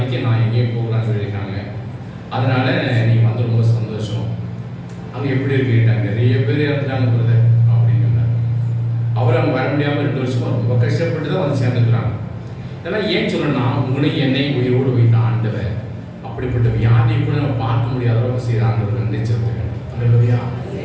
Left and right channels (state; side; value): identical; both; correlation 1.00